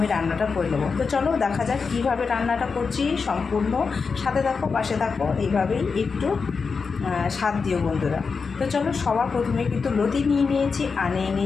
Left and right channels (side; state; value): right; quieter; 5.1 dB